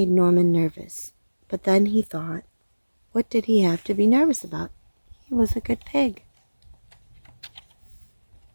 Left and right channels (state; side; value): inverted; both; correlation -1.00